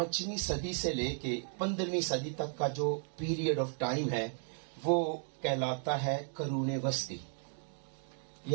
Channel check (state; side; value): silent; left; 54 dB below the other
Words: صدی سے لے کے 15ویں صدی تک کا جو پیریڈ آف ٹائم ہے وہ کہلاتا ہے قرون وسطی